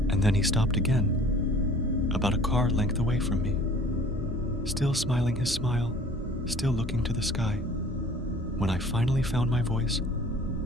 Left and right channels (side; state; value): both; normal; correlation 0.49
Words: And then he stopped again, about a car length away from me. Still smiling his smile, still looking to the sky. When I finally found my voice,